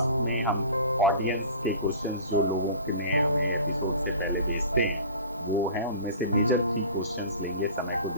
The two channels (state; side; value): inverted; both; correlation -0.40